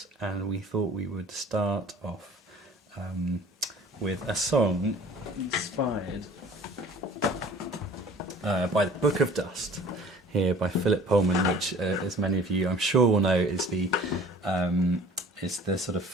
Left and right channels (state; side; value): normal; both; correlation 0.48